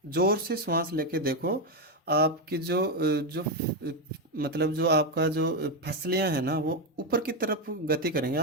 जोर से श्वास लेके देखो, आपकी मतलब जो आपका जो फसलियां हैं ना वो ऊपर की तरफ गति करेंगे।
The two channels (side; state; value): both; normal; correlation 0.07